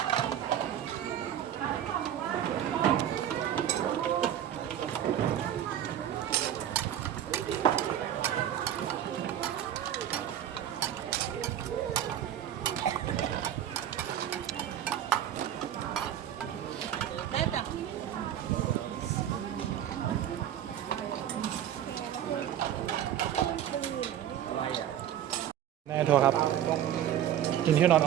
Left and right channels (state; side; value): quieter; left; 10.7 dB